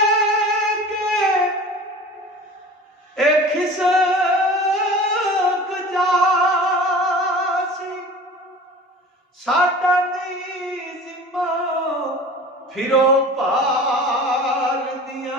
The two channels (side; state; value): both; normal; correlation 0.39